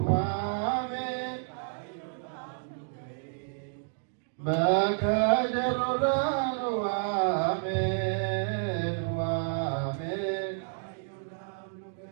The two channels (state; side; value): silent; left; digital silence